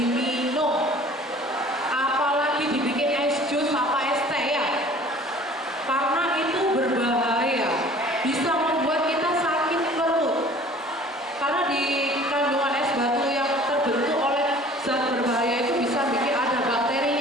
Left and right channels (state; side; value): normal; both; correlation 0.49